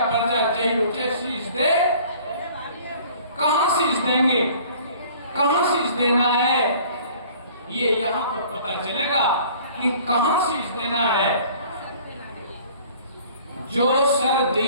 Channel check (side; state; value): both; inverted; correlation -0.51